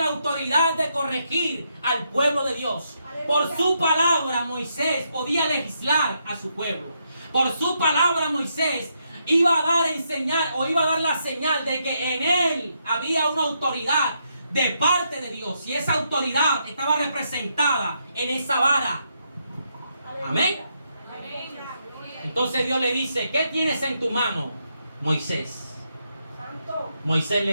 autoridad de corregir al pueblo de Dios. Por su palabra Moisés podía legislar a su pueblo. Por su palabra Moisés iba a dar a enseñar o iba a dar la señal de que en él había una autoridad de parte de Dios. Y esa autoridad estaba representada en esa vara. Amén. Entonces Dios le dice, ¿qué tienes en tu mano, Moisés? Santo. Moisés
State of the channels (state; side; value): inverted; both; correlation -0.79